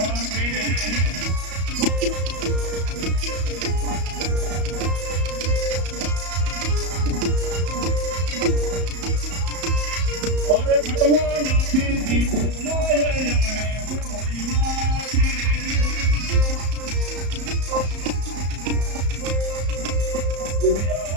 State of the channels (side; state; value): left; late; 34 ms